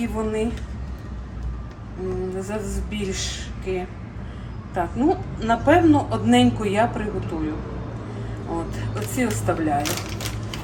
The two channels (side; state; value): both; identical; correlation 1.00